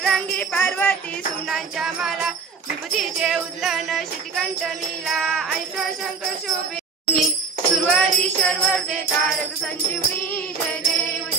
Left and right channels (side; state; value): left; quieter; 5.2 dB